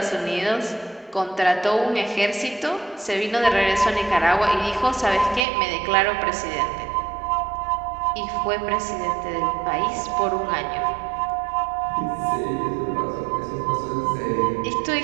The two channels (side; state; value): left; drops out; at 5.5 s